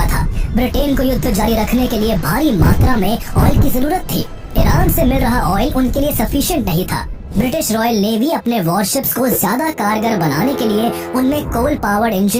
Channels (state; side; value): identical; both; correlation 1.00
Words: था। ब्रिटेन को युद्ध जारी रखने के लिए भारी मात्रा में ऑयल की जरूरत थी। ईरान से मिल रहा ऑयल उनके लिए सफिशिएंट नहीं था। ब्रिटिश रॉयल नेवी अपने वॉरशिप्स को ज्यादा कारगर बनाने के लिए उनमें कोल पावर्ड